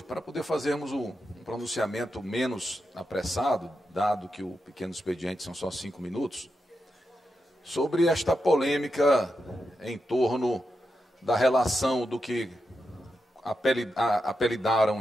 para poder fazermos um pronunciamento menos apressado, dado que o pequeno expediente são só 5 minutos, sobre esta polêmica em torno da relação do que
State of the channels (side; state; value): both; normal; correlation 0.87